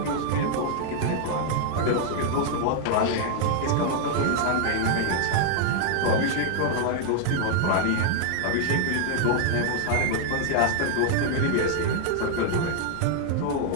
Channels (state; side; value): different; both; correlation 0.00